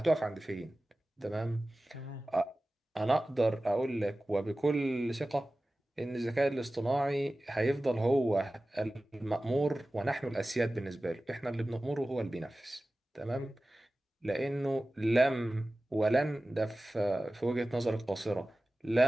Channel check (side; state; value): both; normal; correlation 0.96